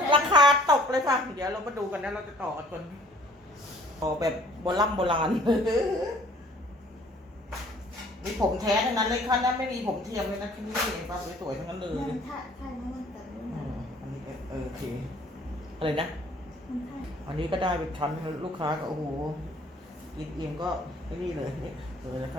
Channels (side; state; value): both; normal; correlation 0.55